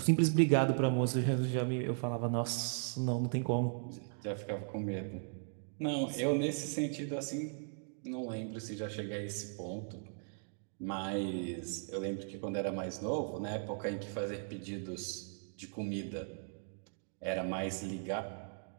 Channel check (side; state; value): left; silent; digital silence